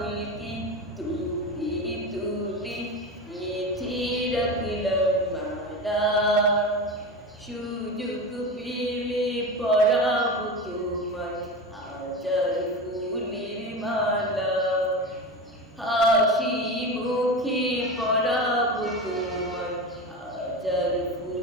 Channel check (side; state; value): both; normal; correlation 0.25